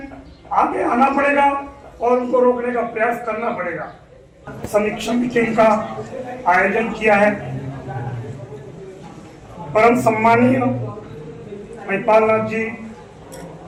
आना पड़ेगा और उनको रोकने का प्रयास करना पड़ेगा। समीक्षा मीटिंग का आयोजन किया है। परम सम्मानीय महिपाल नाथ जी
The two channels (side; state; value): both; identical; correlation 1.00